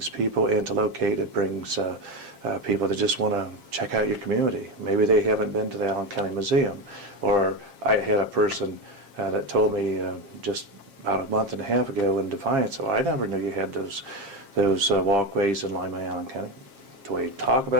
people in to locate, it brings people that just want to check out your community. Maybe they haven't been to the Allen County Museum. Or I had a person that told me just about a month and a half ago in Defiance, so I never knew you had those walkways in Lima, Allen County. Do we talk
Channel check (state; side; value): late; left; 7.4 ms